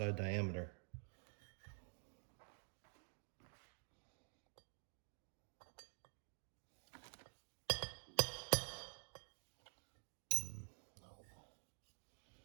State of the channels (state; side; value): silent; left; digital silence